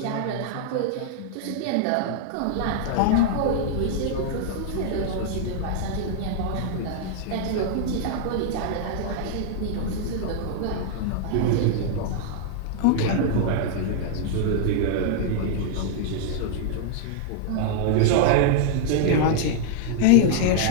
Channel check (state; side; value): different; both; correlation -0.01